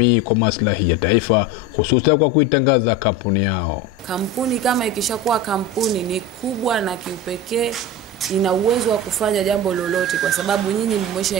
kwa maslahi ya taifa, hususan kwa kuitangaza kampuni yao. Kampuni kama ikishakuwa kampuni ni kubwa na kiupekee, ina uwezo wa kufanya jambo lolote kwa sababu nyinyi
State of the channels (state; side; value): normal; both; correlation 0.26